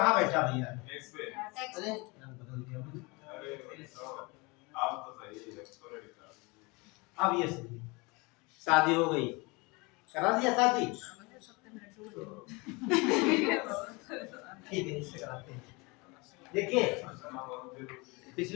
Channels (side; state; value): right; quieter; 26.7 dB